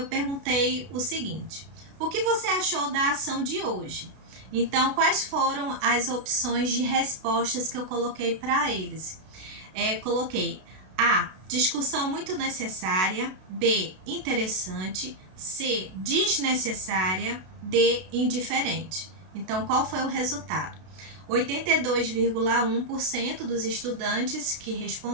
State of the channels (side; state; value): left; late; 32 ms